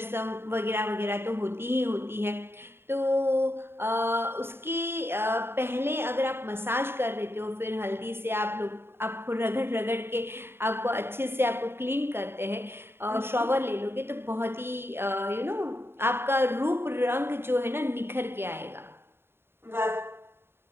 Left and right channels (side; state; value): left; late; 0.11 ms